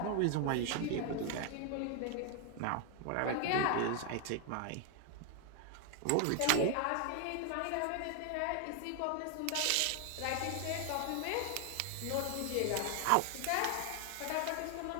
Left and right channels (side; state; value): both; different; correlation 0.00